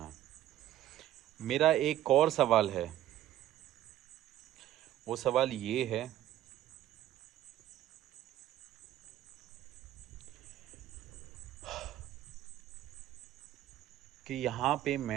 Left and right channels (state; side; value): quieter; left; 13.0 dB